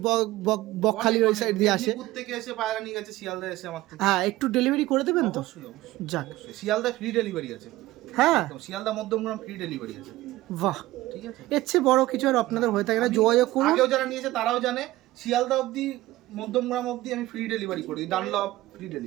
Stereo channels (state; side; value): quieter; left; 17.3 dB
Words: বকখালির ওই সাইড দিয়ে আসে। মেদিনীপুর থেকে এসে পায়রা নিয়ে গেছে, শিয়ালদা এসে আমার থেকে। হ্যাঁ, একটু ডেলিভারি করে দেবেন তো? অবশ্যই অবশ্যই। যাক, শিয়ালদা ফ্রি ডেলিভারি আছে। হ্যাঁ, শিয়ালদা মধ্যমগ্রাম ফ্রি ডেলিভারি আছে। বাহ, ঠিক আছে, এর চেয়ে বড় কিছু আর আপনাদের হয়ে থাকে না। যোগাযোগ করুন। আগেও যারা নিয়েছে তারাও জানে, শিয়ালদা অবধি, মধ্যমগ্রাম অবধি আমি ফ্রি ডেলিভারি করি, ডানলপ ফ্রি